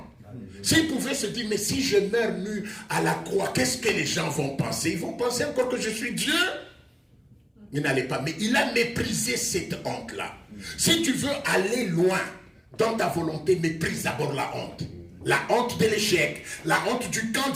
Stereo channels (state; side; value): identical; both; correlation 1.00